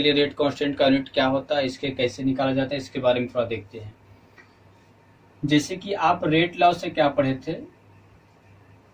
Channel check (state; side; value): identical; both; correlation 1.00